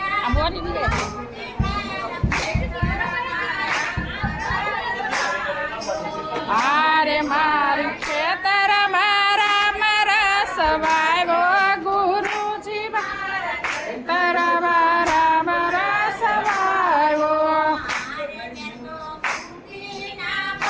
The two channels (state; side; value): identical; both; correlation 1.00